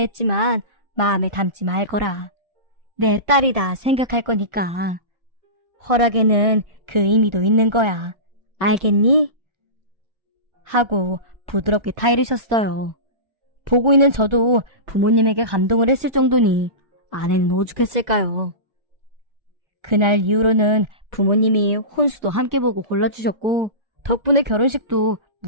마음에 담지 말거라. 내 딸이다 생각할 거니까. 허락에는 그 의미도 있는 거야. 알겠니? 하고 부드럽게 타이르셨어요. 보고 있는 저도 부모님에게 감동을 했을 정도니 아내는 오죽했을까요? 그날 이후로는 부모님이 혼수도 함께 보고 골라주셨고 덕분에 결혼식도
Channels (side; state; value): left; late; 1.4 ms